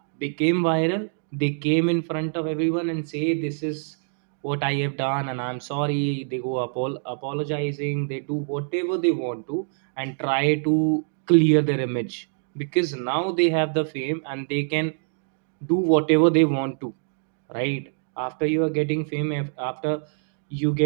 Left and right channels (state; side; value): silent; left; digital silence